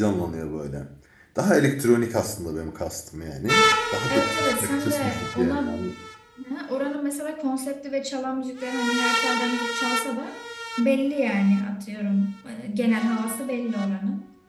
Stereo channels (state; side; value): identical; both; correlation 1.00